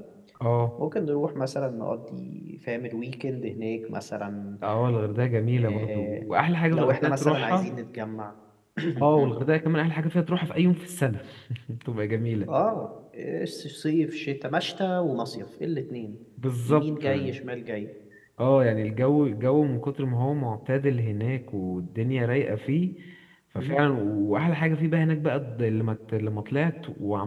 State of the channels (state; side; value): identical; both; correlation 1.00